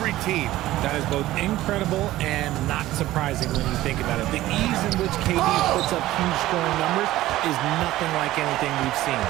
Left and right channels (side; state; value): left; quieter; 15.7 dB